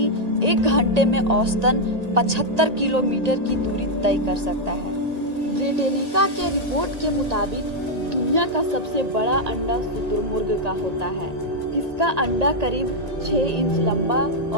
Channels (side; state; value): left; late; 1.8 ms